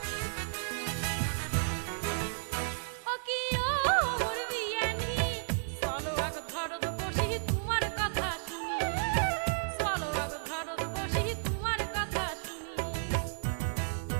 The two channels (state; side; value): silent; left; digital silence